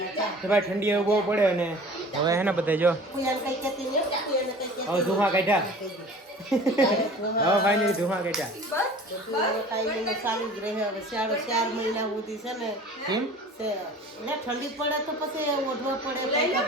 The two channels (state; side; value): normal; both; correlation 0.44